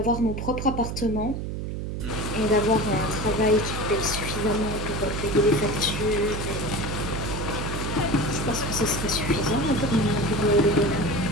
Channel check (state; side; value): noise; right; hum, 4 dB below the sound